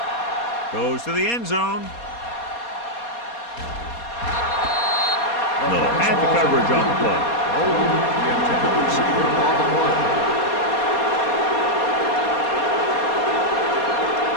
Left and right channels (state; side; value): late; right; 4.2 ms